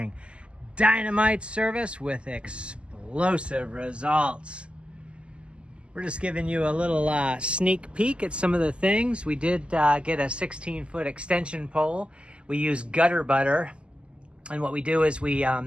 dynamite service with explosive results. We're just giving you a little sneak peek at some of the things. We did get a 16-foot extension pole. We use gutter butter, and what we do is we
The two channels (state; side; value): late; left; 0.053 ms